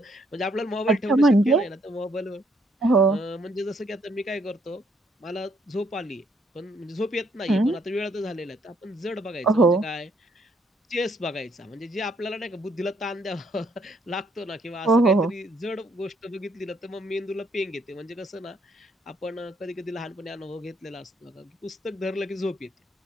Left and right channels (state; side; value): normal; both; correlation 0.70